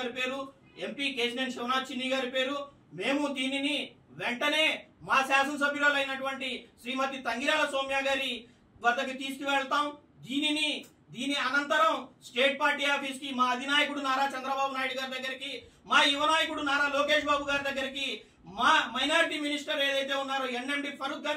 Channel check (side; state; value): both; identical; correlation 1.00